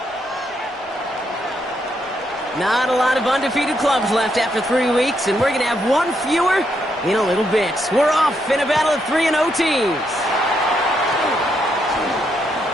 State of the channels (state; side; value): normal; both; correlation 0.78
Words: Not a lot of undefeated clubs left after 3 weeks, and we're going to have one fewer in a little bit. We're off in a battle of 3-0 teams.